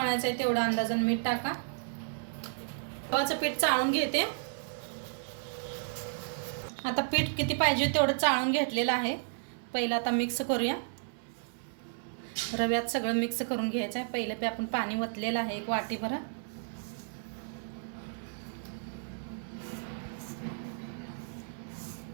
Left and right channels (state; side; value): silent; left; 56 dB below the other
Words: आहे तेवढा अंदाजाने मीठ टाका। गव्हाचं पीठ चाळून घेते। आता पीठ किती पाहिजे तेवढं चाळून घेतलेलं आहे। पहिलं आता मिक्स करूया, रव्यात सगळं मिक्स करून घ्यायचं आहे। पहिलं आपण पाणी वतलेलं आहे एक वाटीभर।